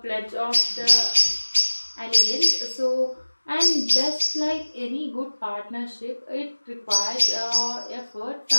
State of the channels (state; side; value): inverted; both; correlation -1.00